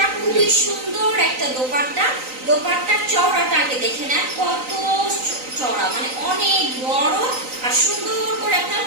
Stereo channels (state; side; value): late; left; 3.9 ms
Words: খুবই সুন্দর একটা দোপাট্টা। দোপাট্টার চওড়াটা আগে দেখে নেন, কত চওড়া, মানে অনেক বড় আর সুন্দর করে আপনার